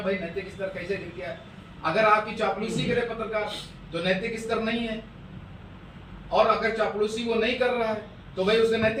भाई नैतिक स्तर कैसे गिर गया? अगर आपकी चापलूसी करे पत्रकार तो नैतिक स्तर नहीं है, और अगर चापलूसी वो नहीं कर रहा है तो भाई उसका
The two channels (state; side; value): identical; both; correlation 1.00